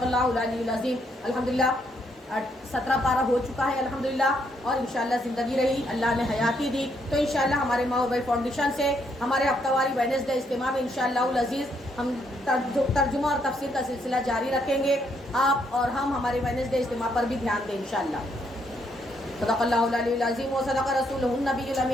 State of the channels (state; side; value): normal; both; correlation 0.74